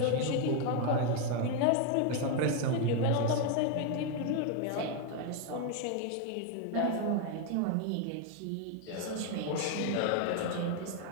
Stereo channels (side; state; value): both; different; correlation 0.01